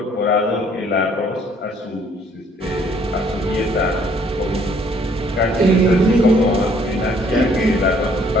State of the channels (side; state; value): both; normal; correlation 0.62